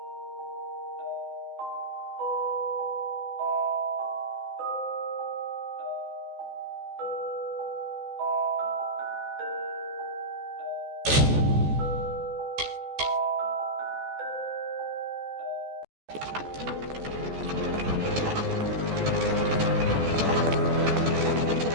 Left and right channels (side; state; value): left; late; 14 ms